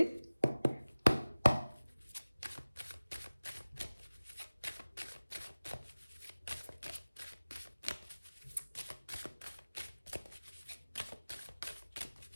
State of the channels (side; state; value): both; inverted; correlation -0.97